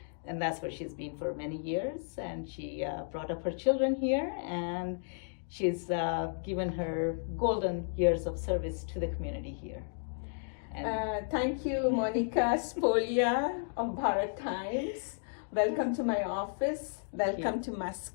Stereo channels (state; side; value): silent; right; digital silence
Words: and that's where she's been for many years. And she brought up her children here, and she's given her golden years of service to the community here. Thank you, Monica Spolia of Bharat Times. Welcome to my office. Welcome to